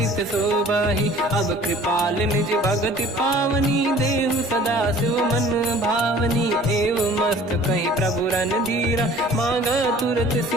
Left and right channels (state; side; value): normal; both; correlation 0.49